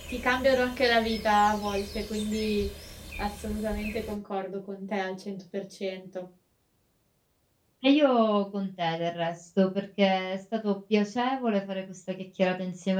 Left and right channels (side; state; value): both; identical; correlation 1.00